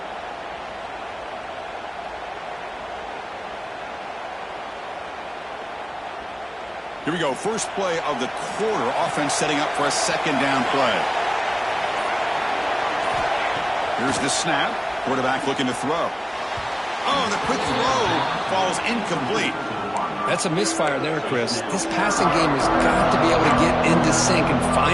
Here we go. First play of the quarter. Offense setting up for a second down play. Here's the snap. Quarterback looking to throw. Oh, the quick throw falls incomplete. That's a misfire there, Chris. This passing game has got to be able to get into sync and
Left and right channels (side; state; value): both; identical; correlation 1.00